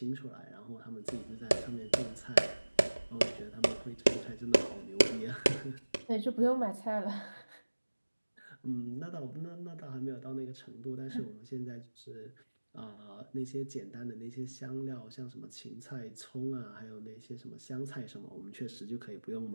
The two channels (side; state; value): both; inverted; correlation -1.00